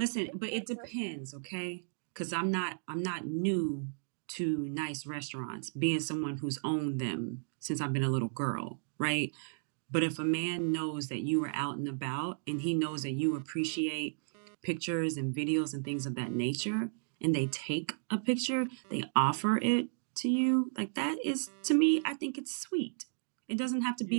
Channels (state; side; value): silent; left; digital silence